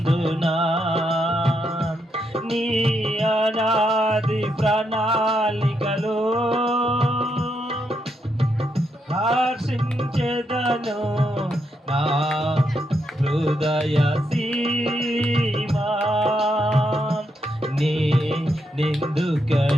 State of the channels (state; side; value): normal; both; correlation 0.80